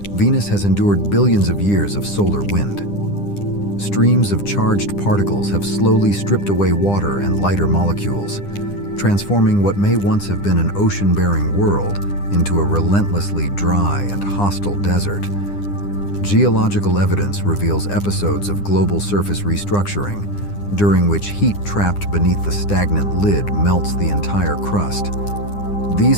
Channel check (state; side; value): late; right; 9.9 ms